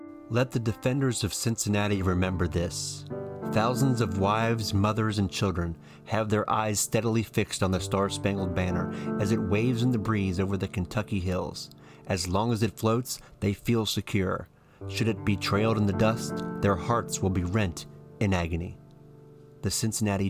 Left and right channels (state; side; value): identical; both; correlation 1.00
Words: Let the defenders of Cincinnati remember this. Thousands of wives, mothers, and children have their eyes steadily fixed on the Star-Spangled Banner as it waves in the breeze over the Kentucky hills. As long as it floats, they feel secure. Should it be trailed in the dust, their hearts will be rent in agony. The Cincinnati